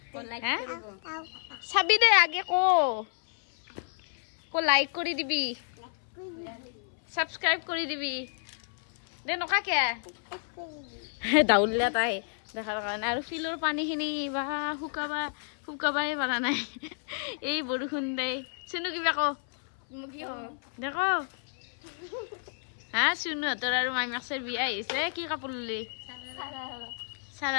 চাবি দে আগে কো লাইক কৰি দিবি সাবস্ক্ৰাইব কৰি দিবি দে নকাকে দাউলিয়া তাই দেখাৰ কাৰণে আৰু ফিলৰ পানীখিনি বা শুকাবাই পাৰা নাই এই বৰষুণ দে শুনো কিবা কো কি দেখো হা শুনো তোৰ আৰু মাইমাক্সৰ বিয়া আহিছে কি কাপোৰ ললি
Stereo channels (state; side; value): silent; right; 57 dB below the other